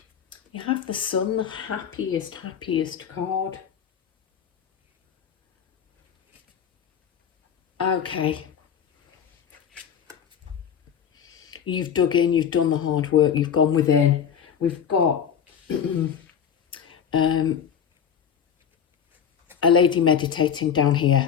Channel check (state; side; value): quieter; right; 8.1 dB